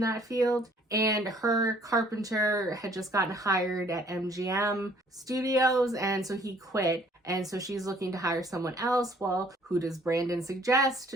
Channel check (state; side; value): normal; both; correlation 0.59